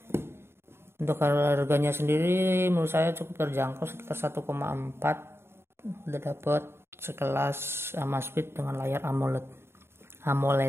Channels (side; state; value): left; late; 0.12 ms